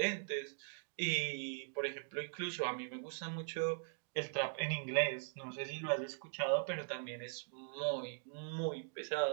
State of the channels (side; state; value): left; silent; digital silence